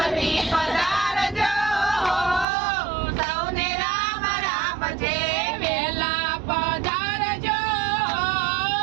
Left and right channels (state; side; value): drops out; left; at 2.5 s